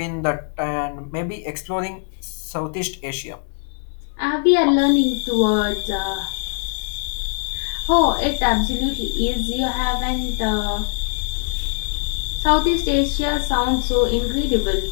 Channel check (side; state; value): right; silent; digital silence